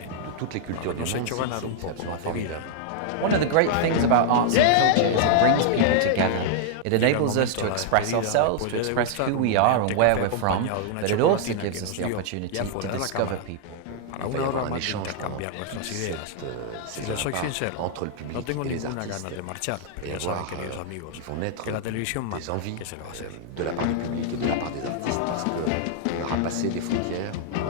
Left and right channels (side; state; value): both; different; correlation -0.01